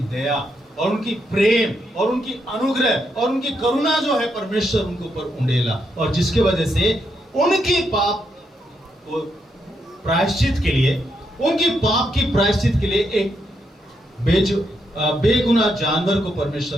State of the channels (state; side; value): normal; both; correlation 0.79